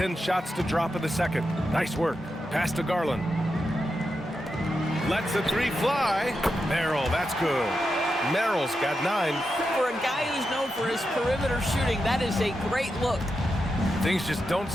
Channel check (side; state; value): both; normal; correlation 0.87